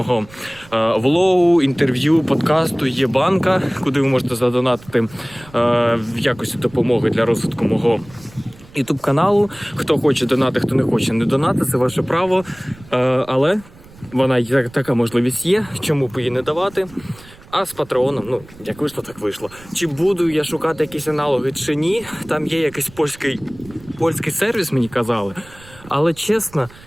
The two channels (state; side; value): noise; right; rumble, 22 dB below the sound